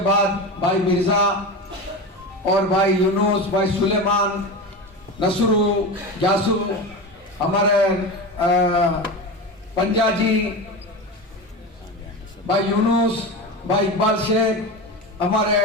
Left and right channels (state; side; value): normal; both; correlation 0.25